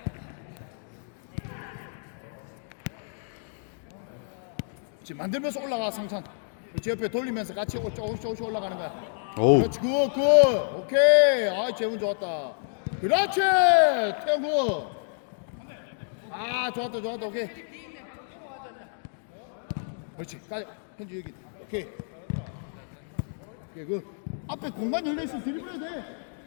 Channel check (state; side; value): silent; right; digital silence